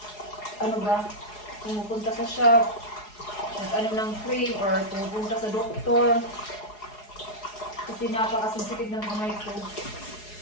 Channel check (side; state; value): right; late; 4.8 ms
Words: pumupunta sa shop, ng cream or pumupunta sa doktor. Kasi napaka-sensitive ng kamay ko.